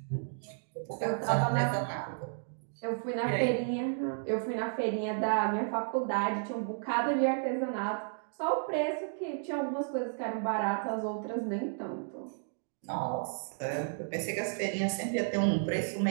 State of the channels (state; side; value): silent; left; digital silence